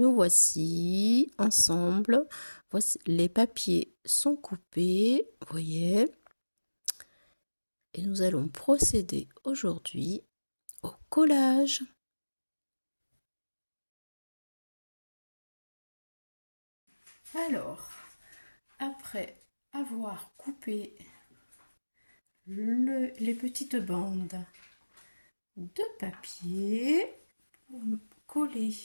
voici ensemble. Voici, les papiers sont coupés, vous voyez. Et nous allons procéder aujourd'hui au collage. Alors, après avoir coupé les petites bandes de papier, pour coller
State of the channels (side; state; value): both; inverted; correlation -1.00